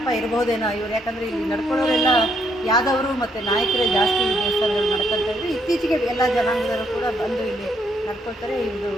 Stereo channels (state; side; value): normal; both; correlation 0.72